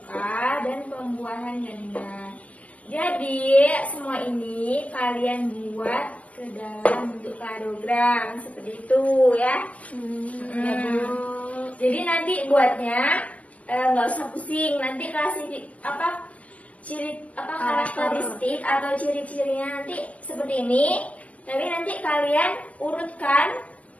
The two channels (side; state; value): right; late; 0.072 ms